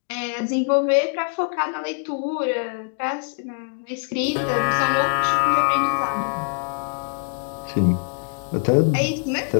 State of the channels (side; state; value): right; silent; 63 dB below the other